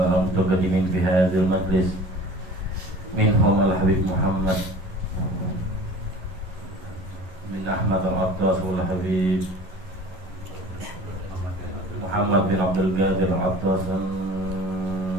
في هذا المجلس، منهم الحبيب محمد بن أحمد العطاس والحبيب محمد بن عبد القادر العطاس،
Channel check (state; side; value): late; left; 11 ms